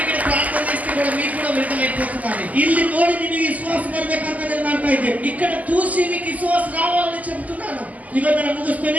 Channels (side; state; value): left; late; 0.076 ms